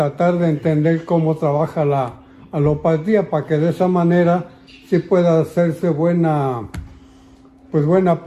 de entender cómo trabaja la alopatía, para que de esa manera sí pueda hacerse buena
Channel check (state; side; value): identical; both; correlation 1.00